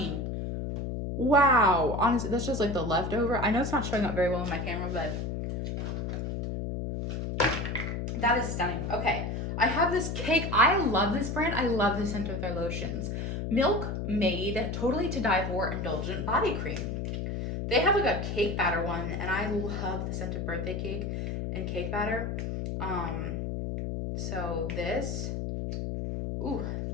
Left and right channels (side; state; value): left; noise; hum, 3 dB below the sound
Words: Wow. Honestly, that's just like the leftover. I know it's not showing up very well on my camera, but that is stunning. Okay, I have this cake. I love this brand. I love the scent of their lotions. Milk Made Totally to Die For Indulgent Body Cream. They have like a cake batter one, and I love the scent of birthday cake and cake batter. So this, ooh,